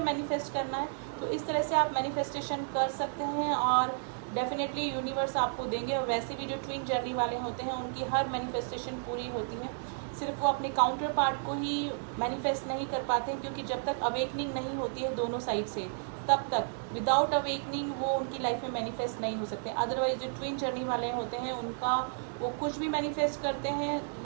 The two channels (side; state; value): left; silent; digital silence